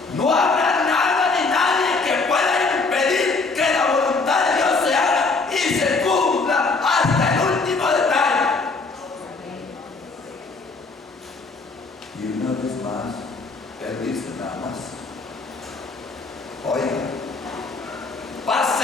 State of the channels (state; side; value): quieter; right; 4.0 dB